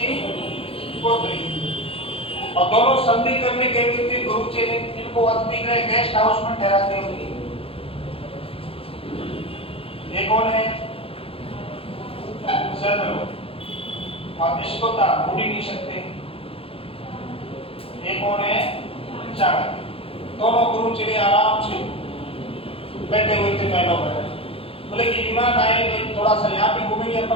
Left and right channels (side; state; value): right; late; 0.27 ms